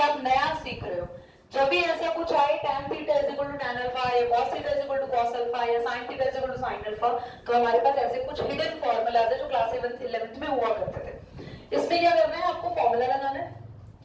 नया सीख रहे हो। जब भी ऐसा कुछ आए tan theta is equal to tan alpha या cos theta is equal to cos alpha या sin theta is equal to sin alpha, तो हमारे पास ऐसे कुछ हिडन फॉर्मूलाज है जो क्लास 11th में हुआ करते थे। इसमें क्या करना है? आपको फॉर्मूला लगाना है।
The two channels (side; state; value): both; identical; correlation 1.00